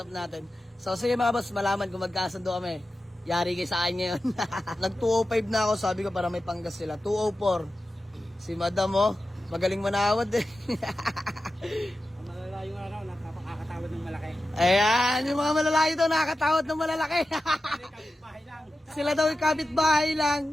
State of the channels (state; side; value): normal; both; correlation 0.93